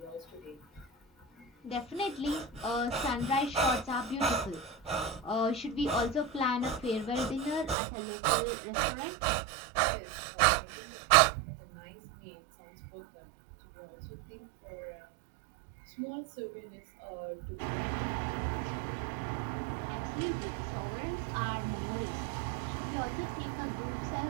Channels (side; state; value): left; drops out; at 7.8 s